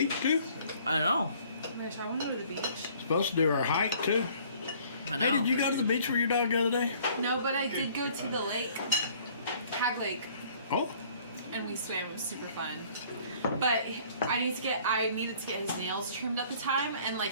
too. I know. Mitch, I want to go to the beach. Supposed to do our hike too. I know. Hey, did you go to the beach with your dog the other day? No, but I did go to the lake, Hag Lake, Oh, and we swam. It was super fun. But I needed to get his nails trimmed at the time, and like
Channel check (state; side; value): inverted; both; correlation -0.56